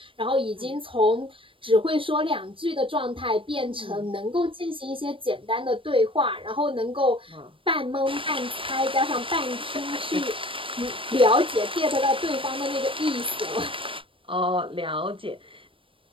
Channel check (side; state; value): left; late; 0.25 ms